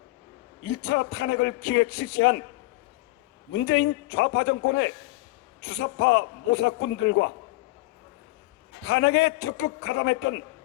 1차 탄핵을 기획 실시한 문재인 좌파 정권의 주사파 모사꾼들과 탄핵에 적극 가담했던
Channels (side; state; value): right; quieter; 20.6 dB